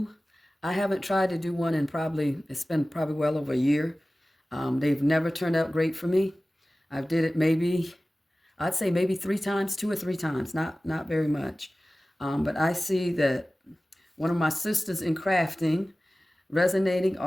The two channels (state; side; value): normal; both; correlation 0.97